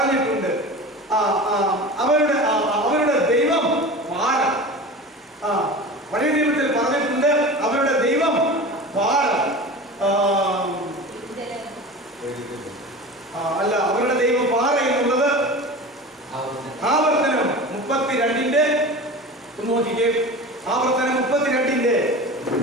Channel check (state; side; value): normal; both; correlation 0.33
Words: അവരുടെ ദൈവം പാറ. പഴയ നിയമത്തിൽ പറഞ്ഞിട്ടുണ്ട് അവരുടെ ദൈവം പാറ. അല്ല, അവരുടെ ദൈവം പാറ എന്നുള്ളത് ആവർത്തനം 32-ന്റെ നോക്കിക്കേ. ആവർത്തനം 32-ന്റെ